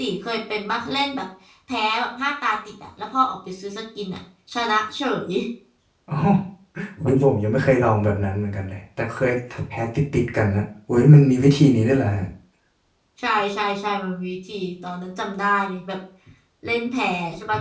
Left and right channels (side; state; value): both; identical; correlation 1.00